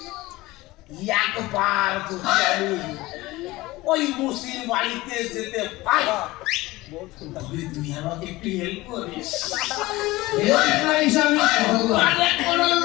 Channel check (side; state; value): right; quieter; 19.5 dB